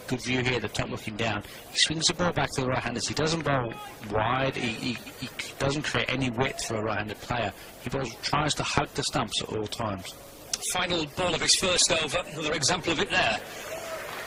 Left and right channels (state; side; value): identical; both; correlation 1.00